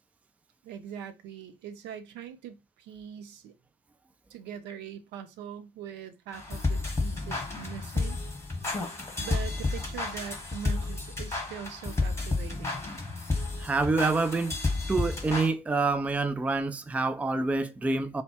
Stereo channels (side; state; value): both; normal; correlation 0.76